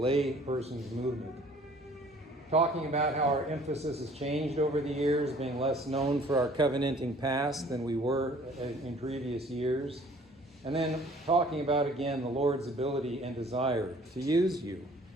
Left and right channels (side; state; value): both; normal; correlation 0.54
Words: person's movement. Talking about how our emphasis has changed over the years, being less known for our covenanting past than we were in previous years. And then talking about, again, the Lord's ability and desire to use you